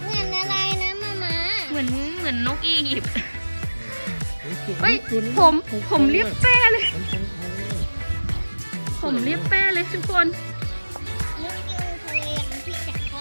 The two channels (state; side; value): inverted; both; correlation -1.00